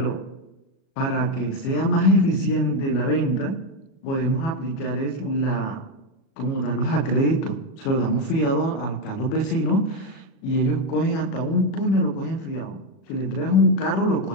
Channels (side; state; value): right; late; 37 ms